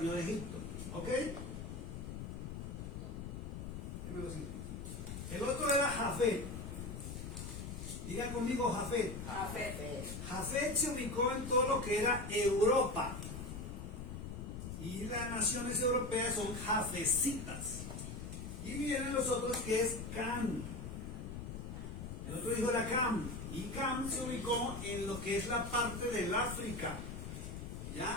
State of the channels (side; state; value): left; noise; rumble, 7 dB below the sound